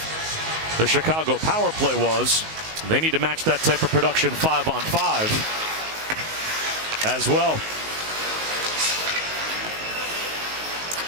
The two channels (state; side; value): late; left; 19 ms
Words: the Chicago power play was. They need to match that type of production 5-on-5 as well.